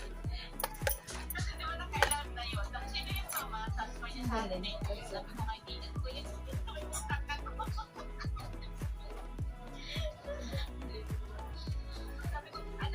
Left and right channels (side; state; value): both; identical; correlation 1.00